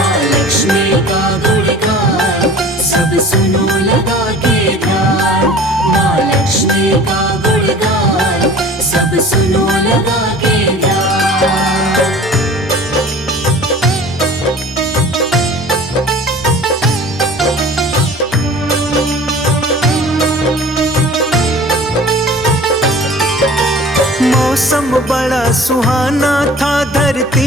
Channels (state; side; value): normal; both; correlation 0.44